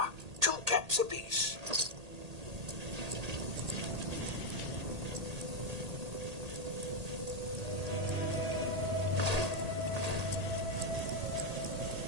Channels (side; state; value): left; late; 1.8 ms